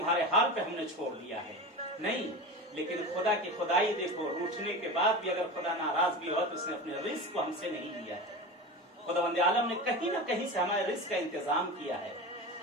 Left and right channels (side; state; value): both; normal; correlation 0.27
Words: حال پہ ہم نے چھوڑ دیا ہے. نہیں, لیکن خدا کی خدائی دیکھو, روٹھنے کے بعد بھی اگر خدا ناراض بھی ہو تو اس نے اپنے رزق کو ہم سے نہیں لیا ہے. خداوند عالم نے کہیں نہ کہیں سے ہمارے رزق کا انتظام کیا ہے,